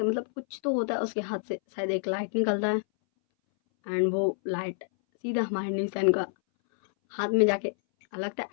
मतलब कुछ तो होता है उसके हाथ से, शायद एक लाइट निकलता है एंड वो लाइट सीधा हमारे न्यूसन का हाथ में जाके लगता है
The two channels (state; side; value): silent; right; 59 dB below the other